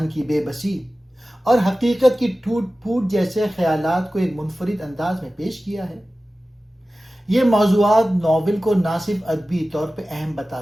کی بے بسی اور حقیقت کی ٹوٹ پھوٹ جیسے خیالات کو ایک منفرد انداز میں پیش کیا ہے۔ یہ موضوعات ناول کو نہ صرف ادبی طور پہ اہم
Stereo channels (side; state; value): both; normal; correlation 0.96